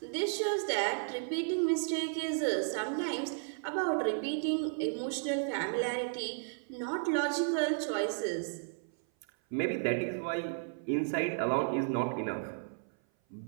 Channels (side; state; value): left; silent; 55 dB below the other